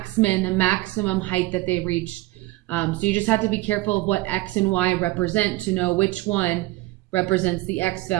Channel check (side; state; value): left; quieter; 19.3 dB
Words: min, the maximum height that they reached. So you just have to be careful of what x and y represent to know which one represents the x